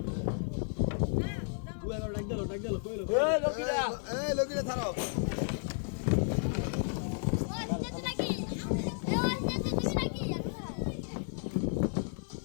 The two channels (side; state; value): right; silent; 55 dB below the other